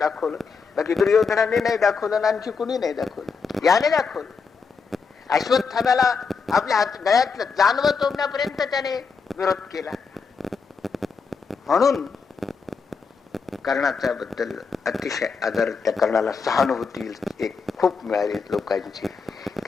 बाकी दुर्योधनाने नाही दाखवलं, आणखी कुणी नाही दाखवलं, याने दाखवलं. अश्वत्थाम्याला आपल्या गळ्यातलं जानवं तोडण्यापर्यंत त्याने विरोध केला. म्हणून कर्णाच्या बद्दल अतिशय आदर, त्या कर्णाला सहानुभूती एक खूप मिळाली लोकांची,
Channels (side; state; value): right; quieter; 5.2 dB